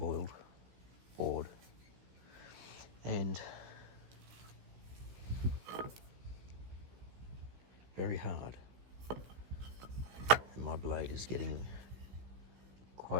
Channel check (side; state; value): left; late; 16 ms